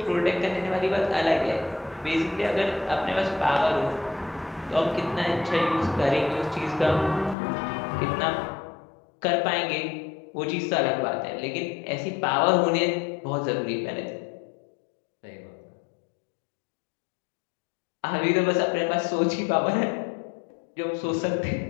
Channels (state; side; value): drops out; right; at 7.4 s